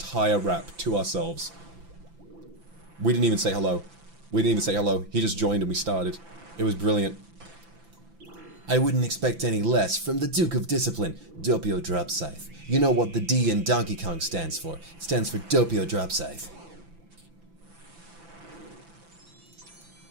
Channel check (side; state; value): left; late; 5.9 ms